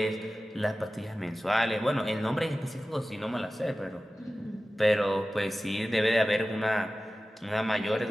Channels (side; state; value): both; normal; correlation 0.96